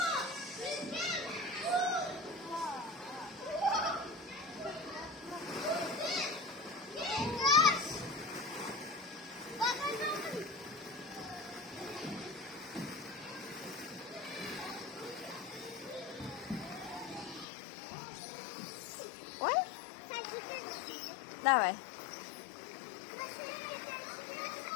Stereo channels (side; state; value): right; drops out; at 17.4 s